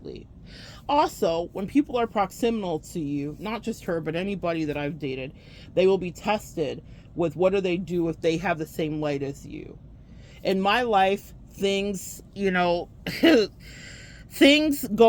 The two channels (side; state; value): both; identical; correlation 1.00